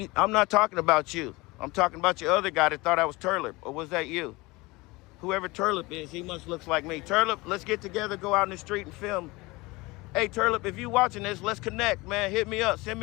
color. I'm not talking about you. I'm talking about your other guy that thought I was Turlip. Or was that you? Whoever Turlip is, he must look like me. Turlip, let's get together, go out in the street and film. Hey, Turlip, if you watching this, let's connect, man. Hit me up. Send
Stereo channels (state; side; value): quieter; right; 22.8 dB